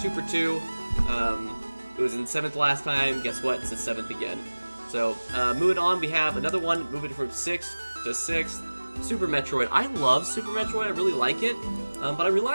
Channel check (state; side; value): inverted; both; correlation -1.00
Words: 2 for 2. It was in 7th last time. Guess what? It's the 7th again. So, moving on, we have another one, moving from 6th to 6th. Super Metroid. I love Super Metroid. I really like it. But I